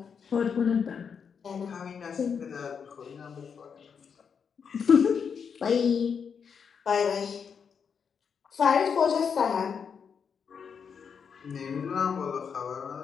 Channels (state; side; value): quieter; right; 6.6 dB